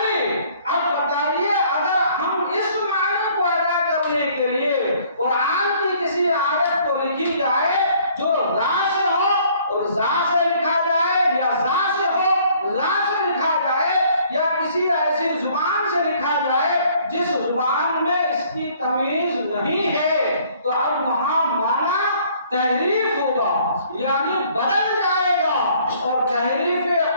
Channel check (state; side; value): inverted; both; correlation -0.59